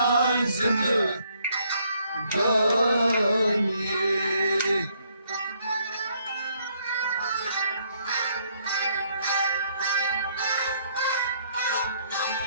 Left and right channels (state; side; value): inverted; both; correlation -0.69